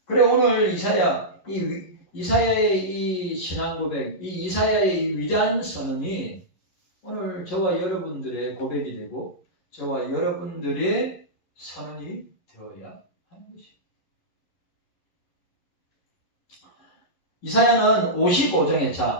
그래 오늘 이사야의 이 신앙 고백, 이 이사야의 이 위대한 선언이 오늘 저와 여러분들의 고백이 되고 저와 여러분들의 선언이 되어야 하는 것입니다. 이사야는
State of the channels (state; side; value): late; right; 11 ms